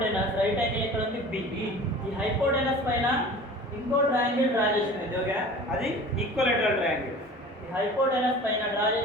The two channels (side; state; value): both; normal; correlation 0.41